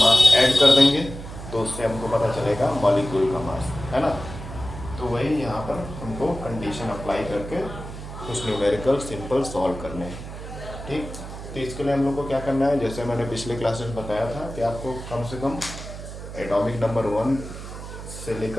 ऐड कर देंगे तो उससे हमको पता चलेगा मॉलिक्यूल का मास, है ना। तो वही यहाँ पर हमको कंडीशन अप्लाई करके कुछ न्यूमेरिकल सिंपल सॉल्व करने हैं, ठीक। तो इसके लिए हम लोग को क्या करना है, जैसे मैंने पिछले क्लासेस में बताया था कि आपको कम से कम एटॉमिक नंबर 1 से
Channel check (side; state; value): right; noise; hum, 11 dB below the sound